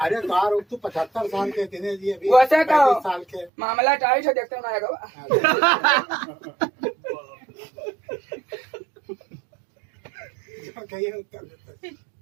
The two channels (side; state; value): left; drops out; at 3.5 s